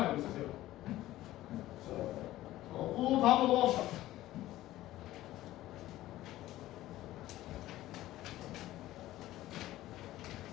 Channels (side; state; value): right; quieter; 15.4 dB